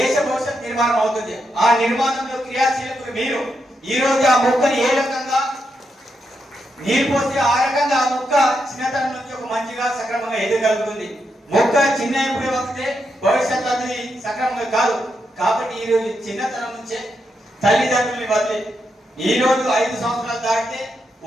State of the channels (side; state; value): both; normal; correlation 0.83